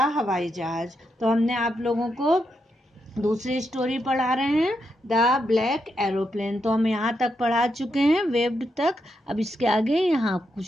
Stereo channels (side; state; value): both; normal; correlation 0.82